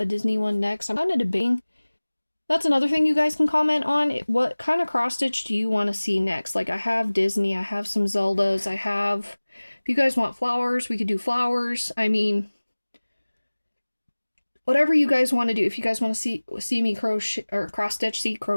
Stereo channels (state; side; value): inverted; both; correlation -1.00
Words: Disney one next. I'm kind of debating. That's another thing you guys can comment on. What kind of cross stitch do you want to see next? Like, I have Disney, I have some Zeldas, I have... If you guys want flowers, we could do flowers. I mean, whatever you guys want to do. If you guys want to see me crochet, or cross stitch, see